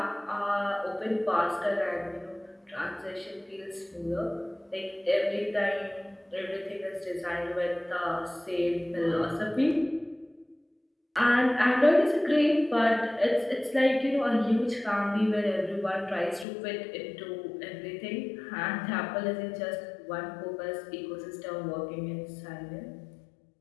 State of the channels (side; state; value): right; drops out; at 16.4 s